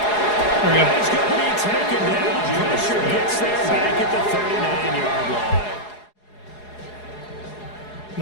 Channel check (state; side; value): late; right; 4.8 ms